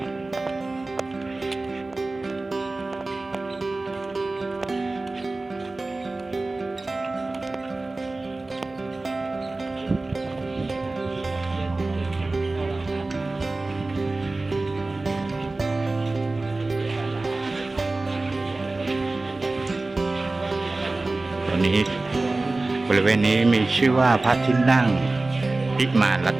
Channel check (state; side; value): quieter; left; 3.2 dB